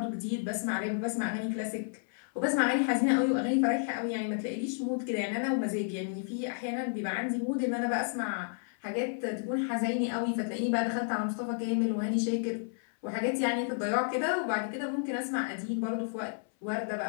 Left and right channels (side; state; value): right; silent; 57 dB below the other